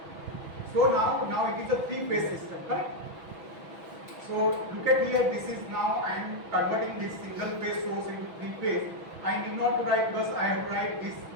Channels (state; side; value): late; left; 6.1 ms